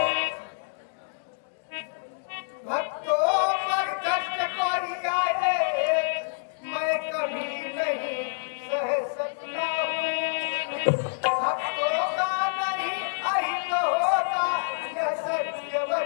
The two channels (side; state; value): right; silent; digital silence